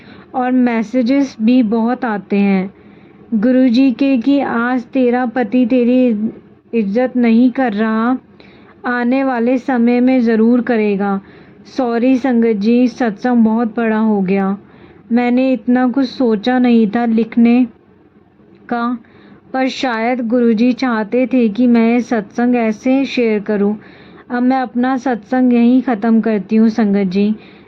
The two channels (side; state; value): both; identical; correlation 1.00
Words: और मैसेजेस भी बहुत आते हैं गुरुजी के कि आज तेरा पति तेरी इज्जत नहीं कर रहा, आने वाले समय में ज़रूर करेगा। सॉरी संगत जी, सत्संग बहुत बड़ा हो गया। मैंने इतना कुछ सोचा नहीं था लिखने का, पर शायद गुरुजी चाहते थे कि मैं सत्संग ऐसे शेयर करूं। अब मैं अपना सत्संग यहीं ख़त्म करती हूँ संगत जी,